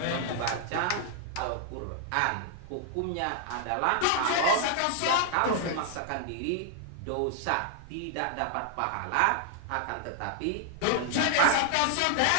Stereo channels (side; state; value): both; different; correlation -0.01